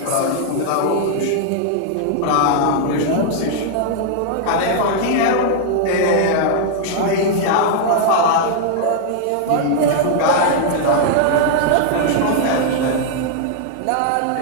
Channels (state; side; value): different; both; correlation -0.01